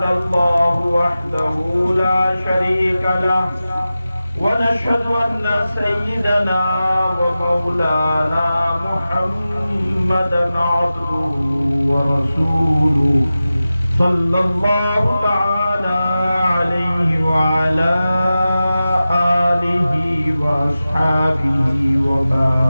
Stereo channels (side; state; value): both; inverted; correlation -0.94